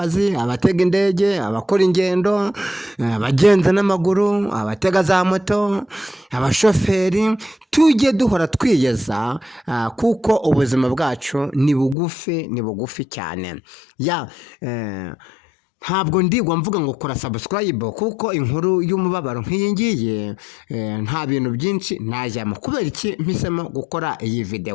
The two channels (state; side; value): drops out; right; at 12.0 s